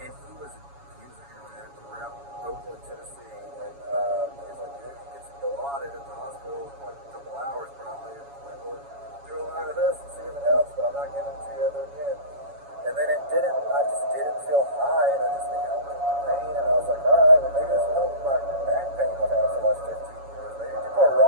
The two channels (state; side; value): late; left; 7.2 ms